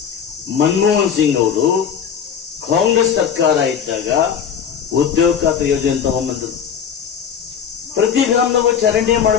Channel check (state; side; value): quieter; right; 7.7 dB